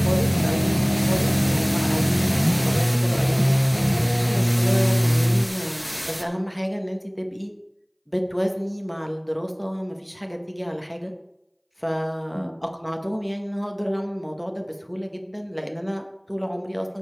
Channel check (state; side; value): identical; both; correlation 1.00